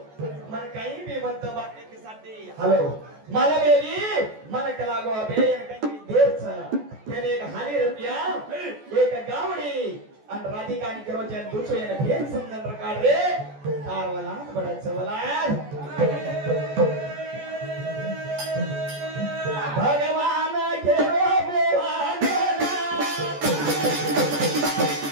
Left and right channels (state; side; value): late; left; 14 ms